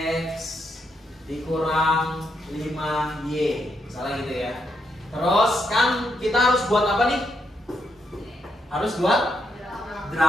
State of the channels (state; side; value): normal; both; correlation 0.79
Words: dikurang 5y, misalnya gitu ya. Terus kan kita harus buat apa nih? Harus buat